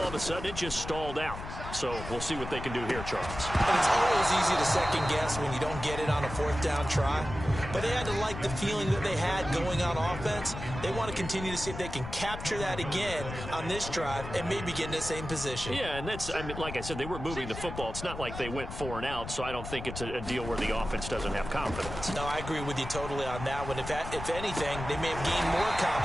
of a sudden it just stalled out. So we'll see what they can do here, Charles. And it's always easy to second guess when you don't get it on a fourth down try. But they had to like the feeling that they had going on offense. They want to continue to see if they can capture that again on this drive and maybe get in the same position. Yeah, and that's, I mean, like I said, they were moving the football. It's not like they went 4 and out, so I don't think it's a deal where the offense doesn't have confidence. No, I agree with you totally on that one. If anything, they may have gained more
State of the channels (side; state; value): left; noise; rumble, 9 dB below the sound